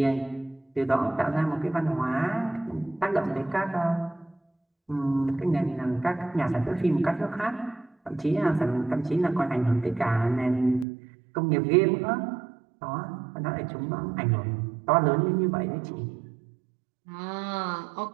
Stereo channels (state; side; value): drops out; left; at 10.9 s